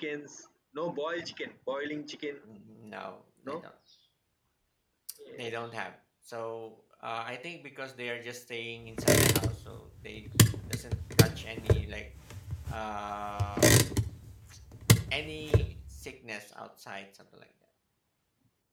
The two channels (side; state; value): both; identical; correlation 1.00